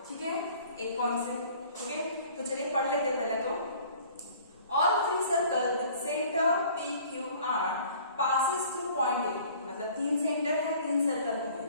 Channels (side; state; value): both; inverted; correlation -0.51